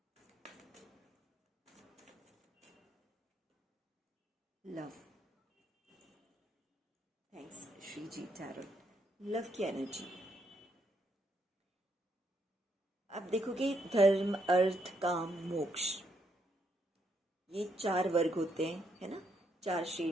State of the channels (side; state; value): both; normal; correlation 0.76